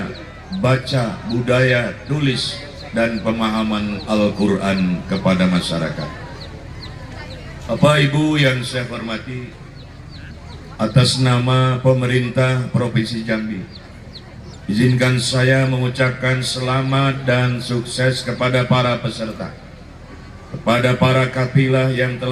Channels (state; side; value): identical; both; correlation 1.00